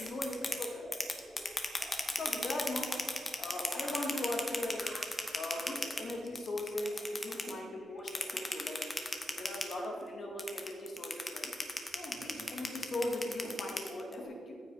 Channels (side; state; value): both; normal; correlation 0.89